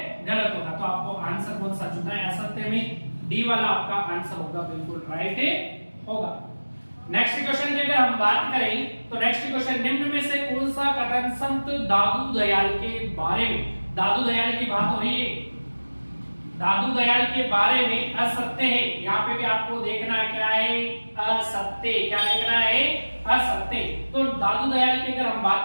गलत होगा। तो आपको आंसर कौन सा चुनना है, असत्य में डी वाला आपका आंसर होगा, बिल्कुल राइट होगा। नेक्स्ट क्वेश्चन की अगर हम बात करें तो नेक्स्ट क्वेश्चन, निम्न में से कौन सा कथन संत दादू दयाल के बारे में, दादू दयाल की बात हो रही है, दादू दयाल के बारे में असत्य है। यहाँ पे भी आपको देखना है क्या है, असत्य। क्या देखना है, असत्य। तो दादू दयाल की अगर हम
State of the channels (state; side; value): inverted; both; correlation -1.00